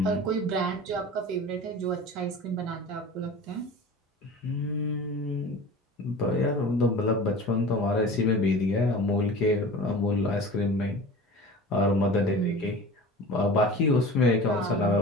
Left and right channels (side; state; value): both; normal; correlation 0.37